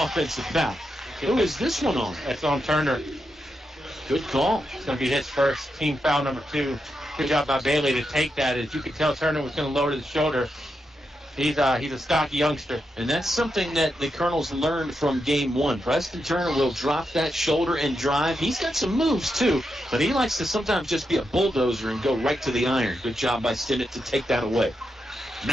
foul. Who is this one on? That's on Turner. Good call. It's going to be his first team foul, number 2. Good job by Bailey to take that. As you could tell, Turner was going to lower the shoulder. He's a stocky youngster. And that's something that the Colonels learned from game 1. Preston Turner will drop that shoulder and drive. He's got some moves, too, but he likes to sometimes just be a bulldozer and go right to the iron. Good job by Stinnett to take that away.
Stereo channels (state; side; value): normal; both; correlation 0.85